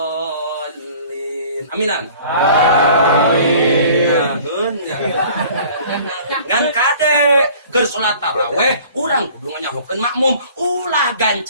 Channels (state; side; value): inverted; both; correlation -0.49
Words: Aminan. Amin. Ngan kade keur salat tarawih urang kudu nganyahokeun makmum ulah